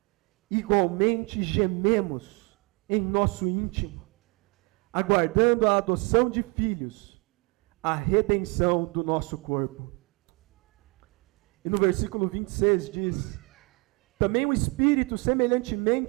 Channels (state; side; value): quieter; left; 29.1 dB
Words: igualmente gememos em nosso íntimo, aguardando a adoção de filhos, a redenção do nosso corpo. E no versículo 26 diz: também o Espírito